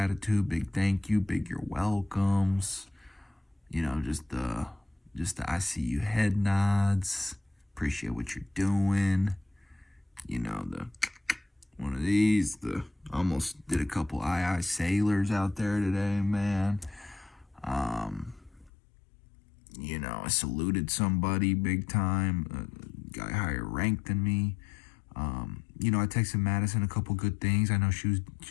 big thank you, big you're welcomes. Just the I see you head nods. Appreciate what you're doing. The one of these. Almost did a couple aye sailors out there today, man. I saluted somebody big time. A guy higher ranked than me. I texted Madison a couple good things. I know she's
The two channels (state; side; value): drops out; right; at 18.7 s